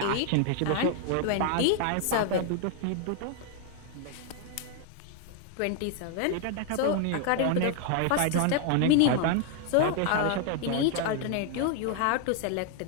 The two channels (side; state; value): both; different; correlation 0.00